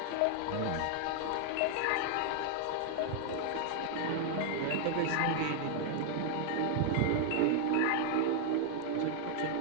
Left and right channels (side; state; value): both; different; correlation 0.00